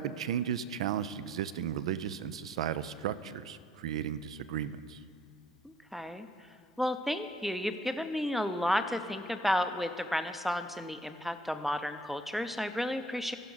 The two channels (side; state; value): both; normal; correlation 0.58